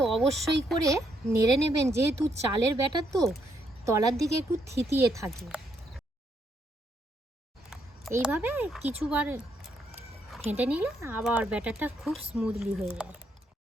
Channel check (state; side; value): normal; both; correlation 0.75